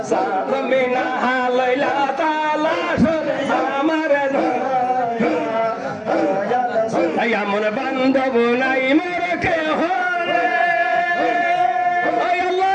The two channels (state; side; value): identical; both; correlation 1.00